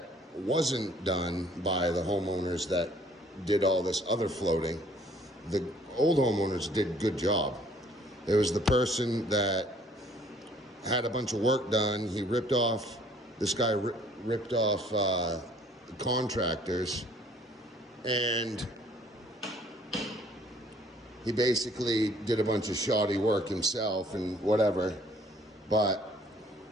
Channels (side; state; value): both; normal; correlation 0.58